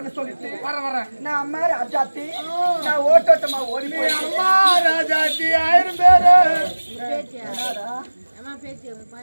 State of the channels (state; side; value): inverted; both; correlation -1.00